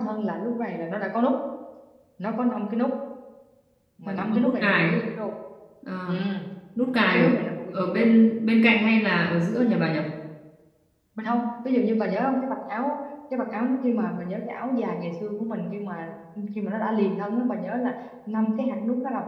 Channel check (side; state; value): both; identical; correlation 1.00